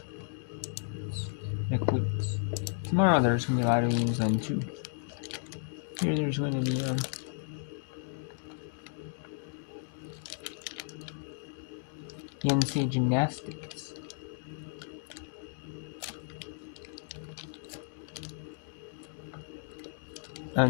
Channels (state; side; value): silent; right; digital silence